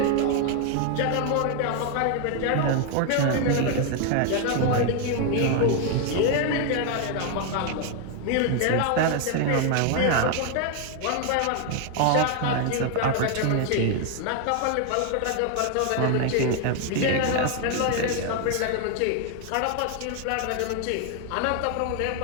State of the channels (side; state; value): both; different; correlation 0.00